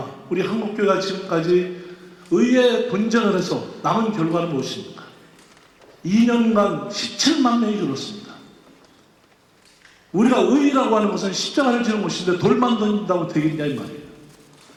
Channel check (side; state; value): both; identical; correlation 1.00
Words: 우리 한국교회가 지금까지 의회 분쟁을 해서 남은 결과는 무엇입니까? 2년간 17만 명이 줄었습니다. 우리가 의의라고 하는 것은 십자가를 지는 것인데 돌만 던진다고 되겠냐 이 말이에요.